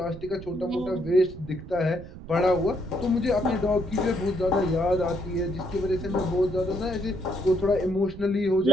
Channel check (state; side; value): noise; right; rumble, 14 dB below the sound